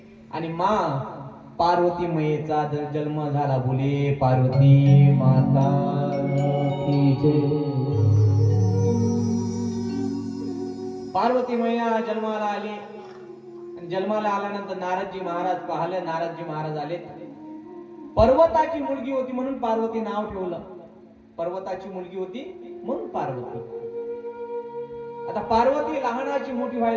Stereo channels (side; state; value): both; identical; correlation 1.00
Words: आणि मा पार्वती मैयेचा जन्म झाला. बोले पार्वती माता की जय. पार्वती मैया जन्माला आली. जन्माला आल्यानंतर नारदजी महाराज पाहिलं. नारदजी महाराज आले. पर्वताची मुलगी होती म्हणून पार्वती नाव ठेवलं. पर्वताची मुलगी होती म्हणून पार्वती. आता पार्वती लहानाची मोठी